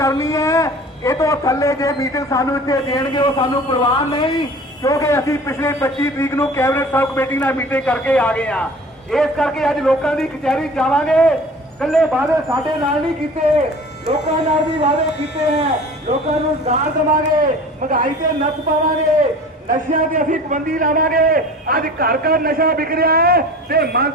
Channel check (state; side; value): normal; both; correlation 0.42